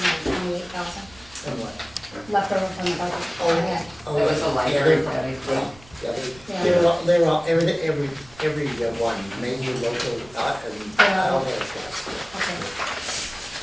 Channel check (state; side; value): noise; right; rumble, 24 dB below the sound